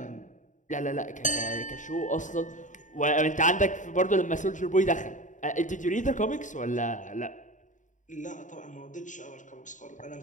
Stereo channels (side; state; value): right; late; 0.36 ms